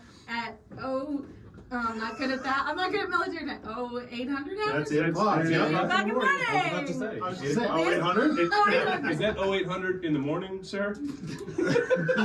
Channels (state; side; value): identical; both; correlation 1.00